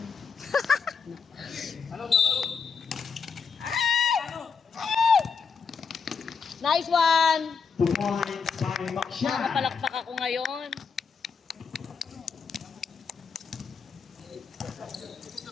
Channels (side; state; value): right; quieter; 5.7 dB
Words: Nice one! 2 points by Makshan. Nakapalakpak ako ngayon.